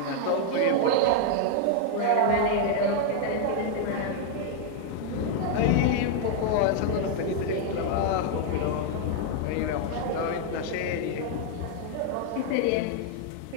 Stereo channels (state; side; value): different; both; correlation 0.00